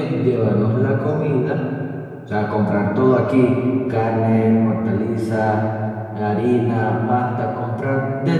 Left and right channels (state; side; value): identical; both; correlation 1.00